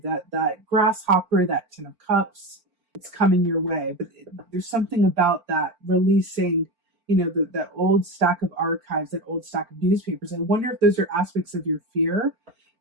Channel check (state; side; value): late; left; 4.4 ms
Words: That grasshopper, that 10 of cups, it's coming your way. But there's something about that releasing, you know, that old stack of archives, that old stack of newspapers. I wonder if those are aspects of your fear